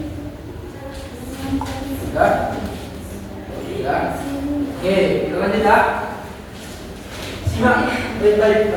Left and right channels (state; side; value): identical; both; correlation 1.00